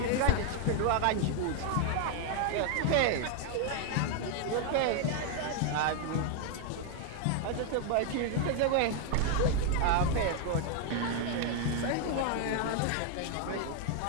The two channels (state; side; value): different; both; correlation 0.00